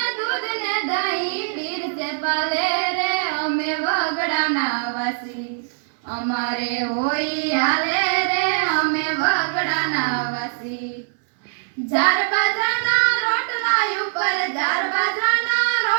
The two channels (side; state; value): left; silent; 61 dB below the other